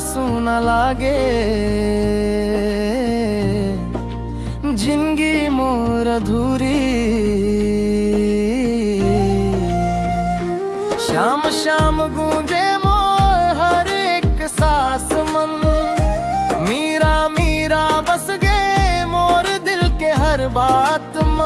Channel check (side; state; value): both; identical; correlation 1.00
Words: सुना लागे जिंदगी मोर अधूरी श्याम श्याम गूंजे मोर हर एक सांस मन मीरा मीरा बस गए मोर दिल के हर बात